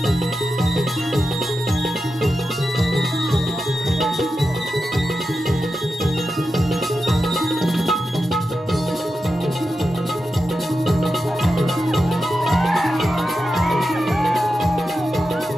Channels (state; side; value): normal; both; correlation 0.90